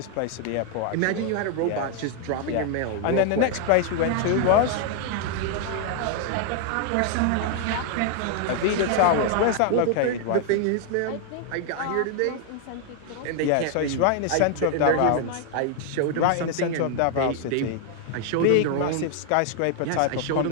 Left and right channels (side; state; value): both; different; correlation 0.00